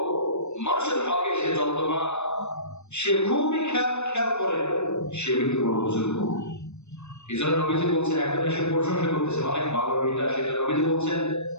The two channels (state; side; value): late; right; 0.82 ms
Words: মানুষের হকে সে যত্নবান, সে খুবই খেয়াল করে, সে ব্যক্তি বড় বুজুর্গ। এই জন্য নবীজি বলছেন, একজন এসে প্রশংসা করতেছে অনেক ভালো এটা সেটা, নবীজি বলছেন